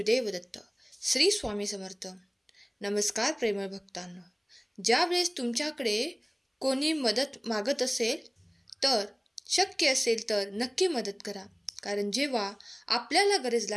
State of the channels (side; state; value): both; identical; correlation 1.00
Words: दत्त. श्री स्वामी समर्थ. नमस्कार प्रेमळ भक्तांनो. ज्यावेळेस तुमच्याकडे कोणी मदत मागत असेल तर शक्य असेल तर नक्की मदत करा. कारण जेव्हा आपल्याला गरज